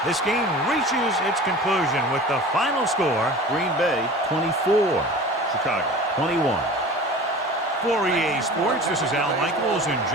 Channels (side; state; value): both; normal; correlation 0.39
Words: This game reaches its conclusion with the final score, Green Bay 24, Chicago 21. For EA Sports, this is Al Michaels and